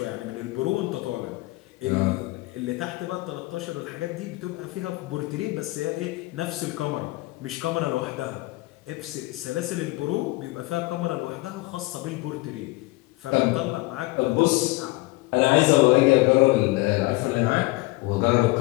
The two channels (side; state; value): right; quieter; 22.1 dB